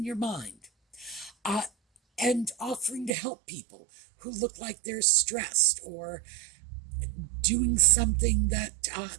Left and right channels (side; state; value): left; drops out; at 3.1 s